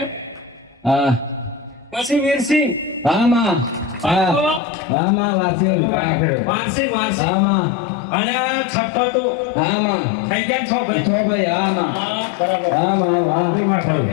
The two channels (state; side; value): drops out; right; at 4.6 s